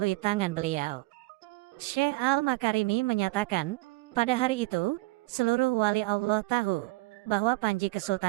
tangan beliau. Syekh Al-Makarimi menyatakan, pada hari itu, seluruh wali Allah tahu bahwa panji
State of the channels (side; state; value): left; quieter; 21.8 dB